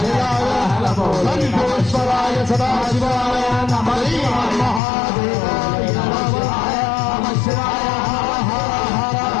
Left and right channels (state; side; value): drops out; right; at 4.8 s